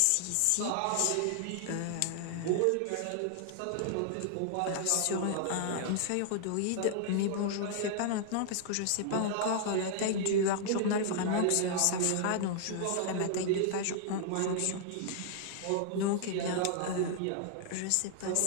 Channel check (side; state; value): both; different; correlation -0.01